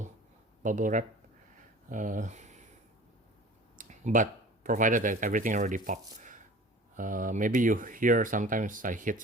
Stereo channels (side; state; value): both; normal; correlation 0.42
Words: wrap. But provided that everything already popped. Maybe you hear sometimes I hit